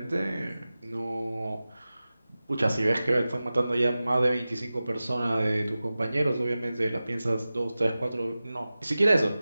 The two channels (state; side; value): inverted; both; correlation -0.96